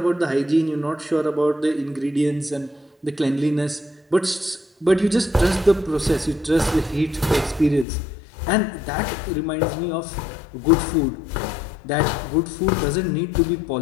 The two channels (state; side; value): drops out; right; at 7.9 s